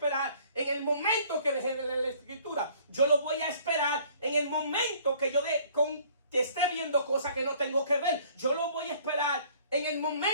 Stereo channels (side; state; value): both; inverted; correlation -0.56